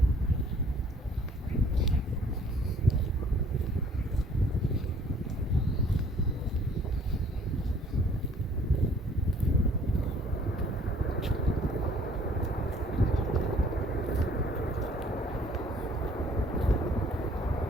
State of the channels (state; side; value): normal; both; correlation 0.57